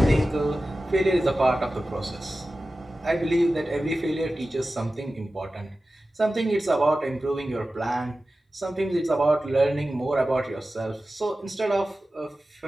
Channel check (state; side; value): normal; both; correlation 0.95